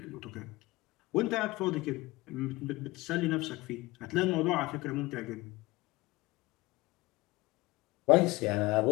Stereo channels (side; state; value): right; quieter; 20.7 dB